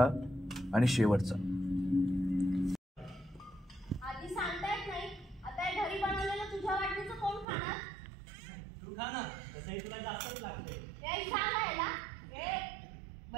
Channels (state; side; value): drops out; left; at 7.5 s